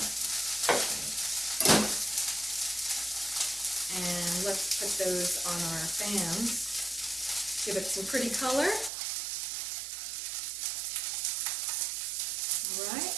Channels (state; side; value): drops out; left; at 8.9 s